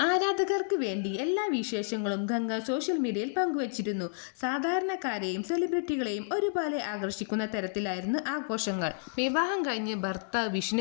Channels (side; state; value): right; silent; digital silence